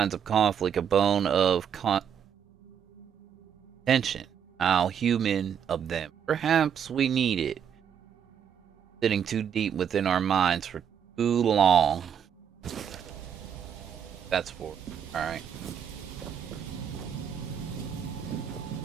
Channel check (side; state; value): left; quieter; 8.3 dB